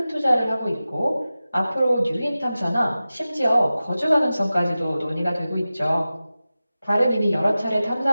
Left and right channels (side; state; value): both; inverted; correlation -0.95